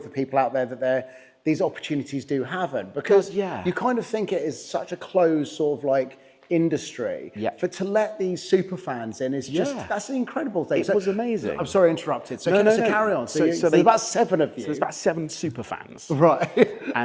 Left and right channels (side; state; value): both; identical; correlation 1.00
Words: for people out there that these opportunities do happen, because you kind of think it is such a closed sort of like industry. Yeah. To let these super fans in is just, that's an incredible thing. It was amazing. I'm sorry I interrupted. So carry on. So there's about 7 of you. So there's about 7 super fans. Right.